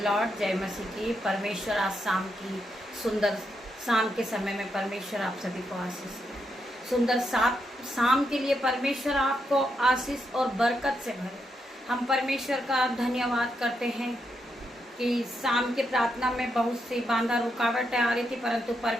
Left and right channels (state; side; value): normal; both; correlation 0.81